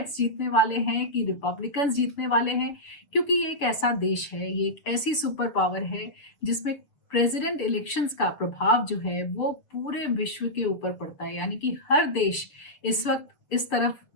जीतने वाले हैं कि रिपब्लिकन्स जीतने वाले हैं। क्योंकि ये एक ऐसा देश है, ये एक ऐसी सुपर पावर है जिसमें प्रेसिडेंट इलेक्शंस का प्रभाव जो है वो पूरे विश्व के ऊपर पड़ता है। यानी कि हर देश इस वक्त इस तरफ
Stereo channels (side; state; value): right; late; 7.1 ms